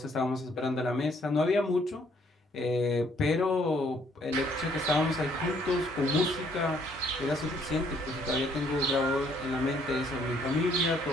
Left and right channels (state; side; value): normal; both; correlation 0.66